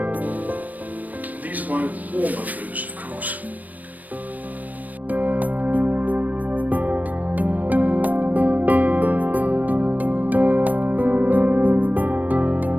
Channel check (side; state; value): left; late; 0.079 ms